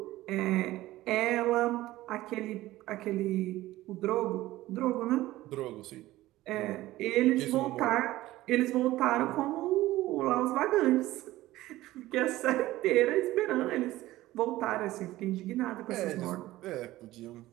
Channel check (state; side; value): quieter; left; 16.6 dB